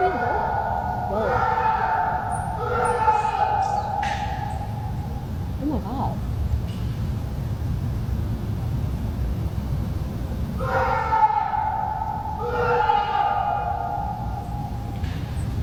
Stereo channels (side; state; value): both; identical; correlation 1.00